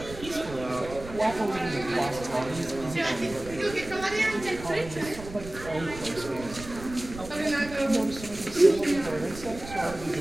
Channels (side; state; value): right; noise; rumble, 13 dB below the sound